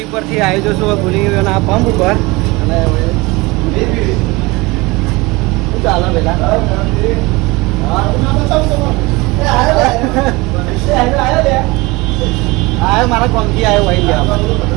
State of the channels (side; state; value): left; quieter; 23.5 dB